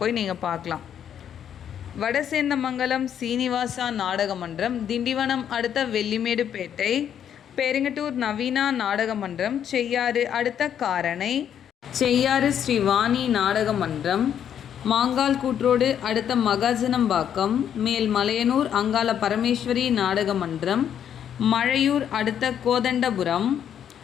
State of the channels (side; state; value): right; quieter; 9.2 dB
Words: போய் நீங்கள் பார்க்கலாம். வடசேந்தமங்கலம் சீனிவாசா நாடக மன்றம், திண்டிவனம் அடுத்த வெள்ளிமேடுபேட்டை, பெருங்கட்டூர் நவீனா நாடக மன்றம், செய்யாறு அடுத்த காரணை, செய்யாறு ஸ்ரீவாணி நாடக மன்றம், மாங்கால் கூற்றோடு அடுத்த மகாஜனம்பாக்கம், மேல் மலையனூர் அங்காள பரமேஸ்வரி நாடக மன்றம், மழையூர் அடுத்த கோதண்டபுரம்,